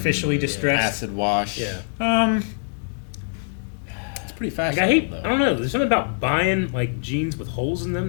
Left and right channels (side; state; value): right; silent; digital silence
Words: distressed. Acid wash. Yeah. It's pretty Like, I fashionable hate. though. I don't know. There's something about buying like jeans with holes in